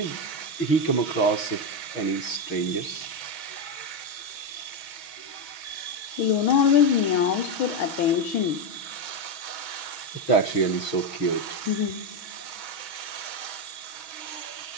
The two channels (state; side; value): late; right; 6.3 ms